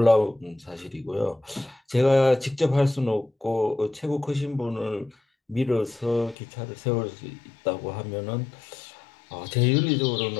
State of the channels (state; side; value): drops out; right; at 6.4 s